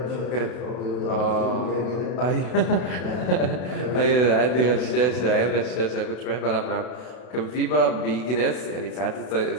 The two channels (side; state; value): right; late; 32 ms